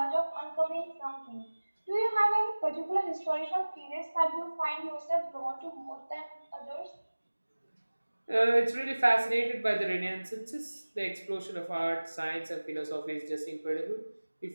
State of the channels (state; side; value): inverted; both; correlation -1.00